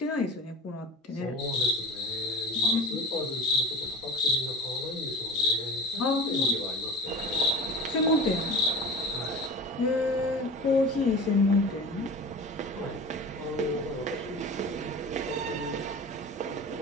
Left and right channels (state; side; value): normal; both; correlation 0.34